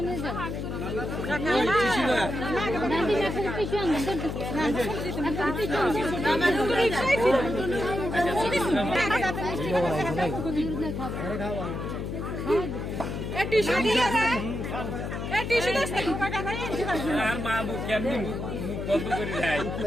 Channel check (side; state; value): left; noise; hum, 5 dB below the sound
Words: আর মা মুখ কেমনি মুখ বন্ধ করে যায়,